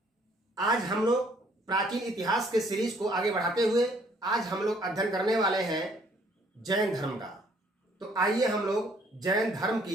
आज हम लोग प्राचीन इतिहास के सीरीज को आगे बढ़ाते हुए आज हम लोग अध्ययन करने वाले हैं जैन धर्म का। तो आइए हम लोग जैन धर्म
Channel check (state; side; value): normal; both; correlation 0.62